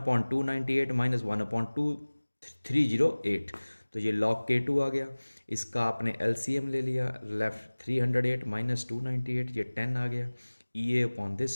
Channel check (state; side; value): inverted; both; correlation -1.00